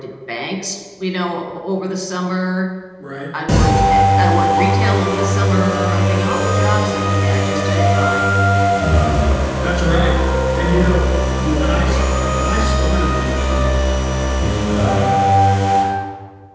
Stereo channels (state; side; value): identical; both; correlation 1.00